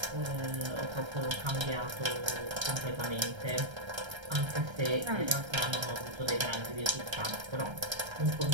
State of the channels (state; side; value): late; left; 1.3 ms